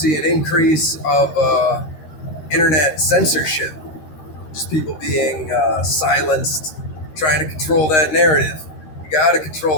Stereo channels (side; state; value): right; late; 13 ms